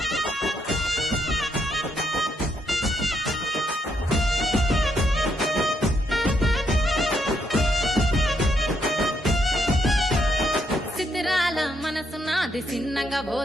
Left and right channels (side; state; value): both; normal; correlation 0.75